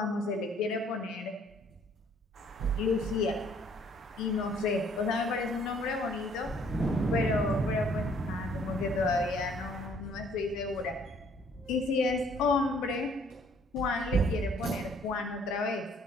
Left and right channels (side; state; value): both; normal; correlation 0.61